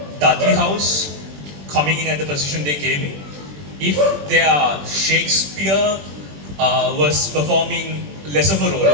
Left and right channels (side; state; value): left; late; 21 ms